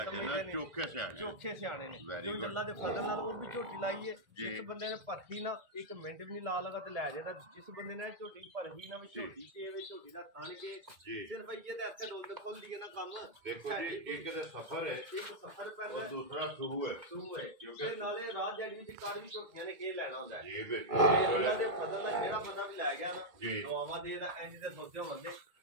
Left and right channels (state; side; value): late; left; 1.9 ms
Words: समझदे ने चोखे सियाणे ने जो जल्ला दे फजल नाल वो भी झोटी लाई है जिस बंदे ने परखी ना एक मिनट भी नहीं ला लगा ते ले जादा जिस बंदे ने झोटी परखी ना भी झोटी के वे झोटी दा खान के सिर्फ ये ते ऐसे रोल खोल दिए ना काम देखो जी एक ते सफर है एक सफर पहले और दूसरा शुरू है क्योंकि नाले रात जड़ी दी कार भी ਝੋਟੀਆਂ ਨੇ ਕੀ ਲੈਣਾ ਹੁੰਦਾ ਜੀ ਬਿਲਕੁਲ ਉਹਨਾਂ ਦੇ ਫਜ਼ਲ ਦਾ ਜਿਹੜਾ ਬੰਦਾ ਵੀ ਲੈ ਗਿਆ ਨਾ ਦੁਆਵਾਂ ਦੇ ਦਾ ਇੰਜ ਦੇ ਸੋਚਿਆ ਬੰਦੇ